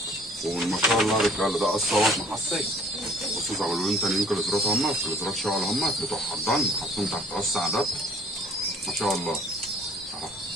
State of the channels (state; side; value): normal; both; correlation 0.54